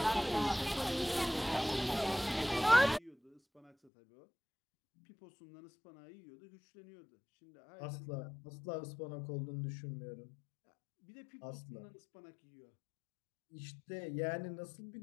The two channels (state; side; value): drops out; right; at 3.9 s